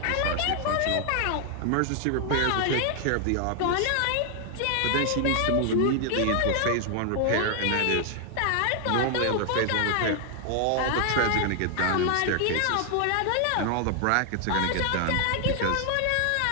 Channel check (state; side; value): different; both; correlation 0.00